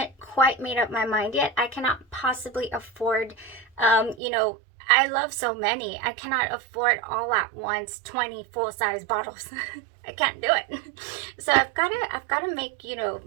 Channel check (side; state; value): left; drops out; at 4.2 s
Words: quite made up my mind yet. I cannot possibly afford, I love so many. I cannot afford all at once 20 full-size bottles. I can't do it. So I've got to make